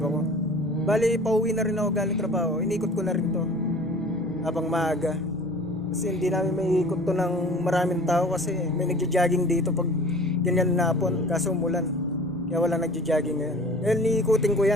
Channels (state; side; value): normal; both; correlation 0.44